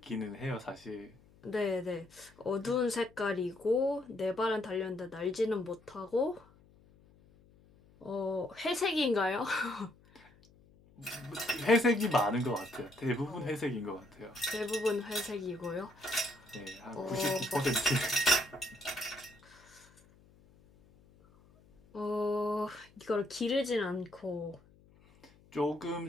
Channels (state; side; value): noise; left; hum, 27 dB below the sound